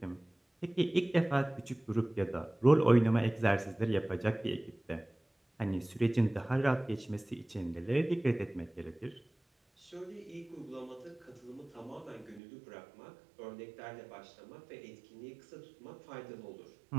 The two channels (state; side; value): drops out; left; at 12.4 s